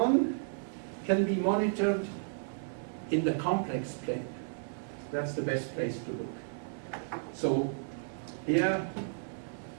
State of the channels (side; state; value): left; silent; digital silence